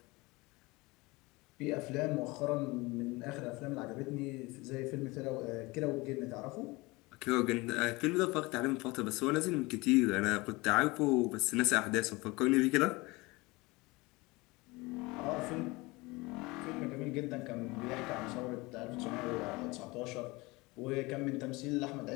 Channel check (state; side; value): quieter; right; 23.4 dB